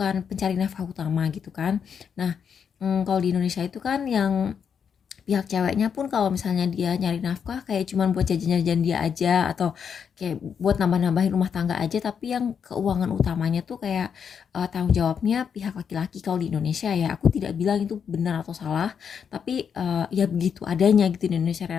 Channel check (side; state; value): right; quieter; 7.2 dB